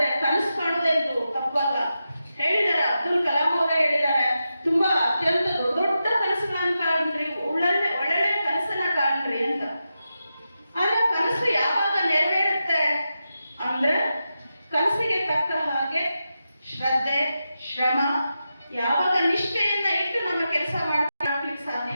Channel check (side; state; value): both; inverted; correlation -0.89